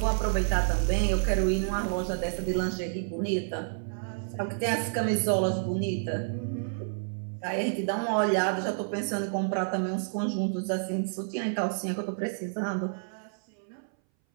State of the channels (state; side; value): silent; left; 58 dB below the other